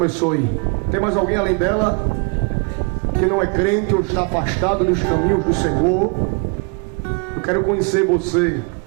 Tem mais alguém além dela que não é crente ou está afastado dos caminhos do Senhor? Eu quero conhecer você.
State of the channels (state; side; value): quieter; left; 35.3 dB